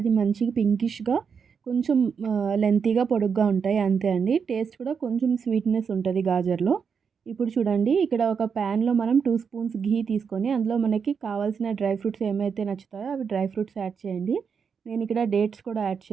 మంచిగా పింకిష్గా, కొంచెం లెంతీగా, పొడుగ్గా ఉంటాయి, అంతే అండి. టేస్ట్ కూడా కొంచెం స్వీట్నెస్ ఉంటుంది గాజర్లో. ఇప్పుడు చూడండి, ఇక్కడ ఒక ప్యాన్లో మనం 2 స్పూన్స్ ఘీ తీసుకొని అందులో మనకి కావాల్సిన డ్రై ఫ్రూట్స్ ఏమైతే నచ్చుతాయో అవి డ్రై ఫ్రూట్స్ యాడ్ చేయండి. నేను ఇక్కడ డేట్స్ కూడా యాడ్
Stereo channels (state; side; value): quieter; left; 6.3 dB